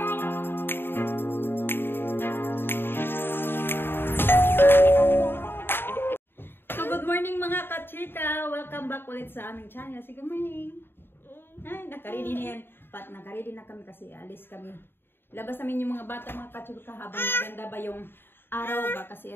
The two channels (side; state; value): right; late; 0.10 ms